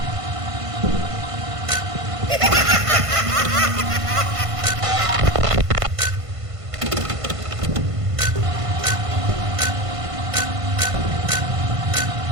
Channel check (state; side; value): late; left; 1.5 ms